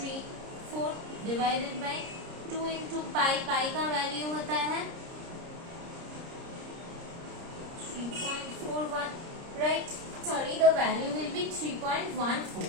4 डिवाइडेड बाई 2 इंटू पाई, पाई का वैल्यू होता है 3.41, right. Sorry, the value will be 3.14,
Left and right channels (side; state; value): left; late; 30 ms